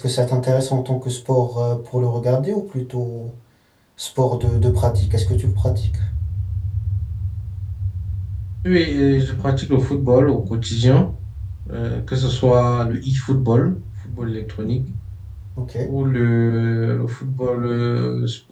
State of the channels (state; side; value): identical; both; correlation 1.00